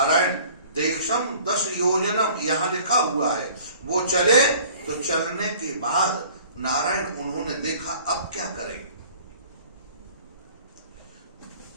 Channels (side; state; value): both; inverted; correlation -0.50